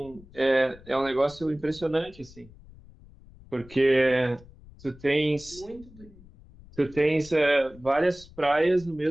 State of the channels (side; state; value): left; noise; rumble, 22 dB below the sound